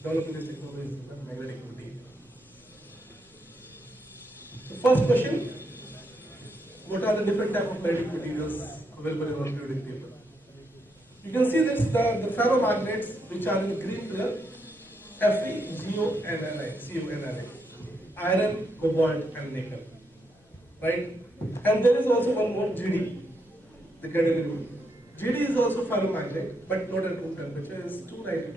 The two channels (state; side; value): normal; both; correlation 0.79